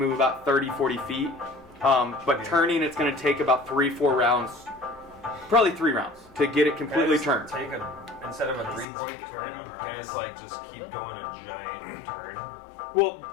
about 30-40 feet. But turning, it's going to take about 3-4 rounds, probably 3 rounds to get it completely turned. Take instead of a 3-point turn, and it's like just keep going a giant turn. Well,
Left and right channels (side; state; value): right; drops out; at 8.8 s